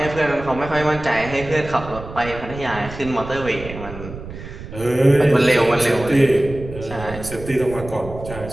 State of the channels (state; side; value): noise; right; rumble, 12 dB below the sound